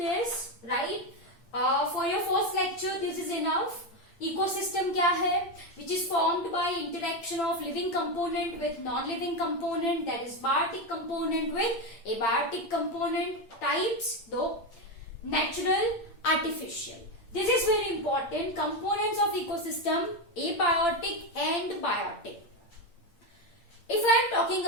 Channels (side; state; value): right; late; 8.6 ms